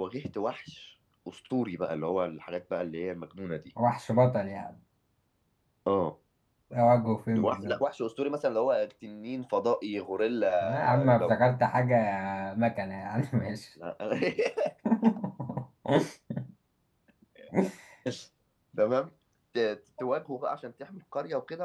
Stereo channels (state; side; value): identical; both; correlation 1.00